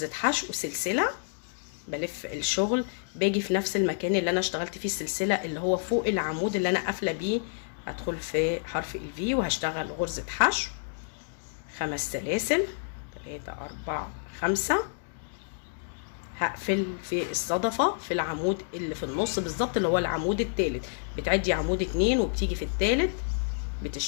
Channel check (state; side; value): silent; right; digital silence